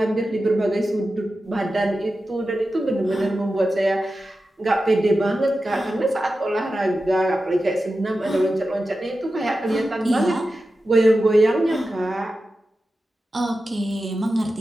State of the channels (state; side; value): normal; both; correlation 0.92